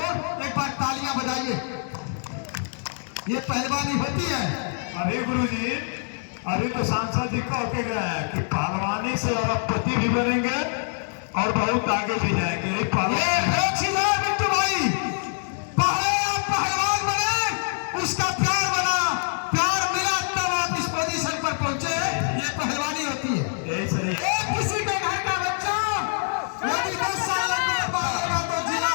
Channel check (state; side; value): silent; right; digital silence